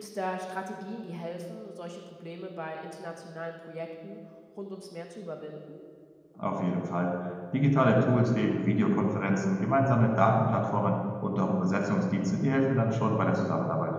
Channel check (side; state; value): both; identical; correlation 1.00